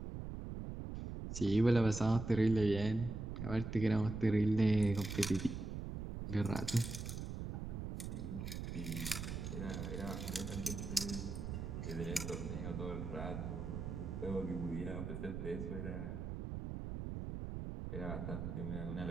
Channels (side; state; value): right; noise; rumble, 5 dB below the sound